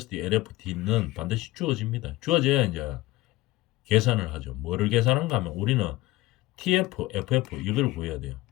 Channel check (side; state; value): right; quieter; 18.3 dB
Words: LFT는 반드시 주어집니다. 주어져야 이제 계산을 하죠. 뭐를 계산한가 하면 우리는 TF, FF 이걸 구해야 돼요.